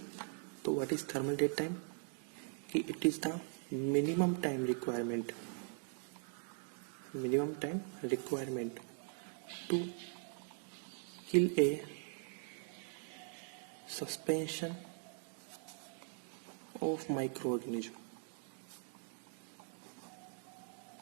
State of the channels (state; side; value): silent; left; 50 dB below the other